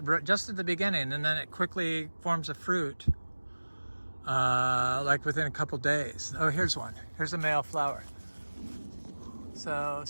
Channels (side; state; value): both; inverted; correlation -1.00